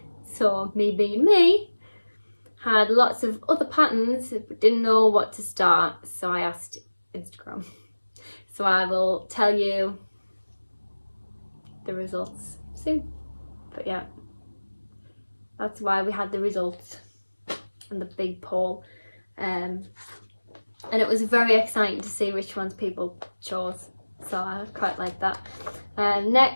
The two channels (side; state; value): both; inverted; correlation -1.00